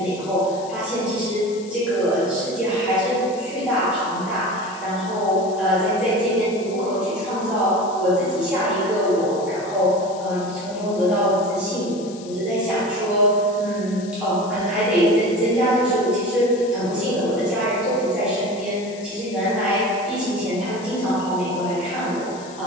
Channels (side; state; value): left; noise; hiss, 19 dB below the sound